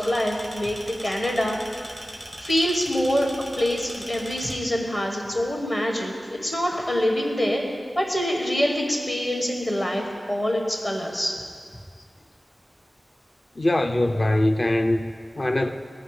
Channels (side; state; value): both; normal; correlation 0.96